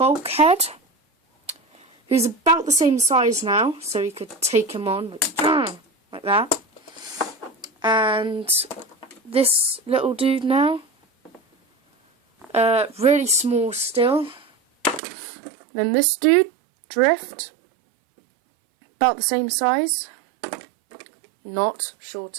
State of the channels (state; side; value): drops out; left; at 15.0 s